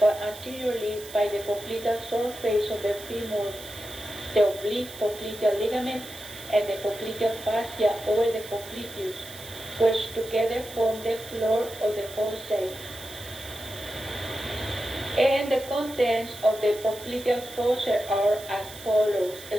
anteriorly by the popliteal surface of the femur, the oblique popliteal ligament, and the popliteal fascia over the popliteus, which together form the floor of the fossa. And the contents of the popliteal fossa are as follows: a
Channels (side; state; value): right; noise; hiss, 15 dB below the sound